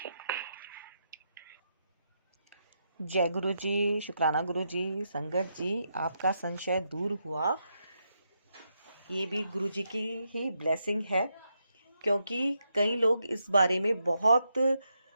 जय गुरु जी, शुक्राना गुरु जी। संगत जी, आपका संशय दूर हुआ, ये भी गुरु जी की ही ब्लेसिंग है, क्योंकि कई लोग इस बारे में बहुत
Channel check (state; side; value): inverted; both; correlation -0.82